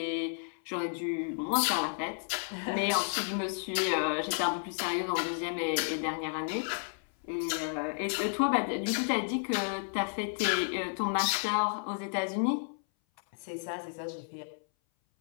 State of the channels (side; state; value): right; silent; 56 dB below the other